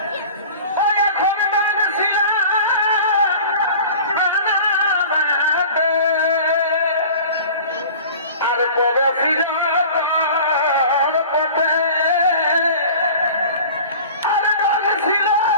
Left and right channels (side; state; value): both; inverted; correlation -0.41